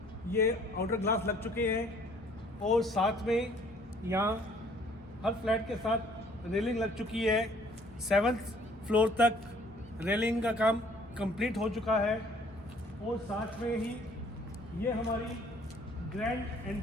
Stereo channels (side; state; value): both; normal; correlation 0.58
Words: ये आउटर ग्लास लग चुके हैं और साथ में यहाँ हर फ्लैट के साथ रेलिंग लग चुकी है। 7th फ्लोर तक रेलिंग का काम कंप्लीट हो चुका है और साथ में ही ये हमारी ग्रैंड